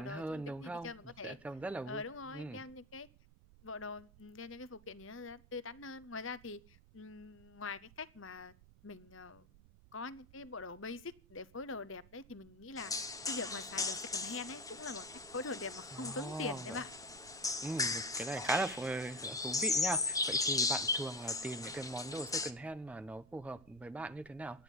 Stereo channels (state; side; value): noise; right; rumble, 23 dB below the sound